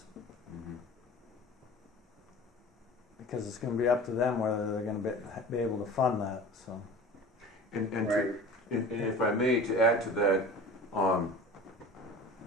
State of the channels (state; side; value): normal; both; correlation 0.38